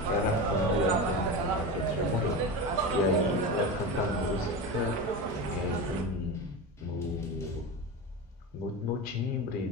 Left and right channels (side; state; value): both; normal; correlation 0.24